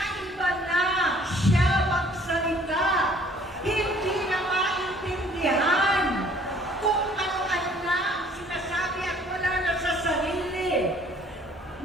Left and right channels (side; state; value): both; normal; correlation 0.57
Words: na siya magsalita, hindi na maintindihan kung ano-ano na sinasabi at wala na sa sarili.